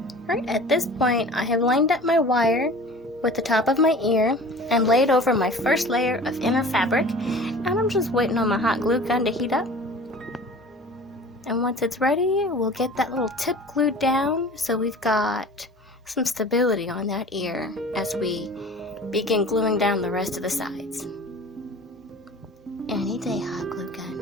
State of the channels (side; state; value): both; normal; correlation 0.42